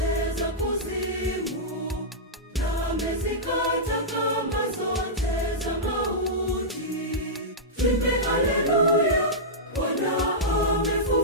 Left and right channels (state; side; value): normal; both; correlation -0.11